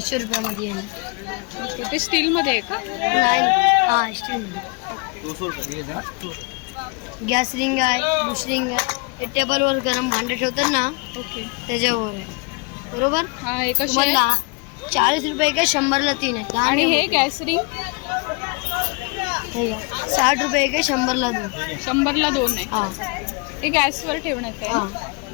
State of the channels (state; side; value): quieter; right; 30.5 dB